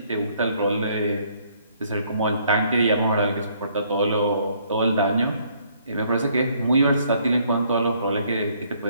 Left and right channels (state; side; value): inverted; both; correlation -0.66